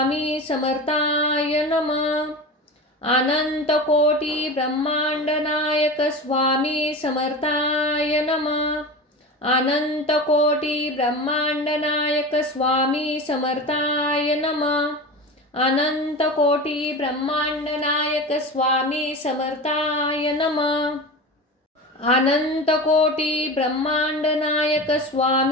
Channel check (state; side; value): normal; both; correlation 0.29